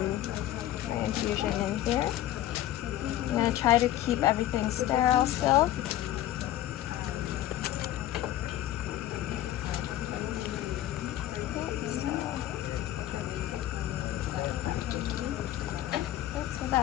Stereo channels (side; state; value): right; quieter; 13.5 dB